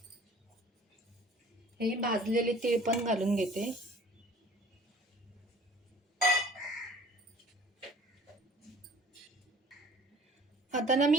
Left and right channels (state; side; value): normal; both; correlation 0.49